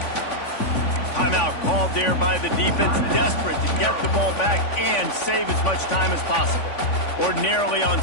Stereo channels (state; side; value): late; right; 3.5 ms